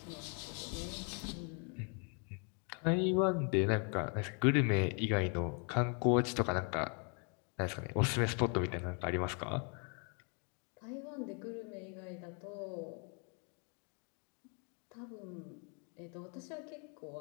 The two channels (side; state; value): right; quieter; 38.0 dB